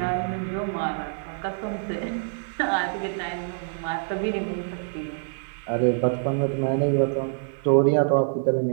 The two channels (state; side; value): silent; left; digital silence